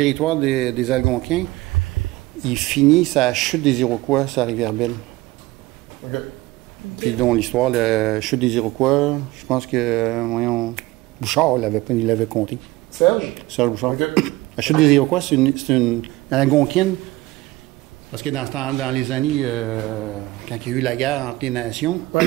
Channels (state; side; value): quieter; left; 19.5 dB